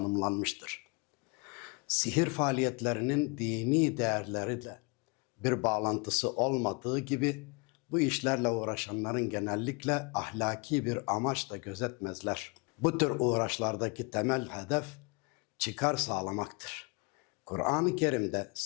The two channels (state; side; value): quieter; right; 30.0 dB